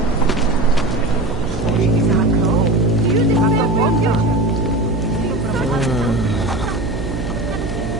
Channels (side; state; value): right; noise; hum, 7 dB below the sound